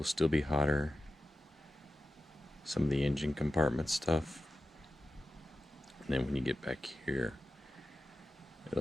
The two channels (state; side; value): normal; both; correlation 0.94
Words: still be hotter. Some of the engine compartment stuff. And then when you get back here,